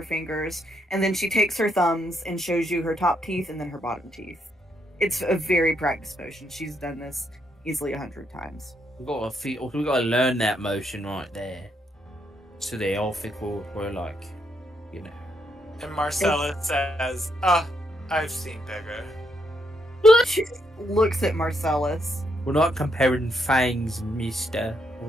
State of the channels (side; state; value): both; normal; correlation 0.77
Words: fingers, and then she takes her thumbs and shows you her top teeth and then her bottom teeth. It's a very practiced motion. She's done this easily 100 times. We gotta learn that motion right there, so they all think we're like, you know. And Marcella says, I've seen bigger. She looks at Marcellus. We're not comparing fangs, mister,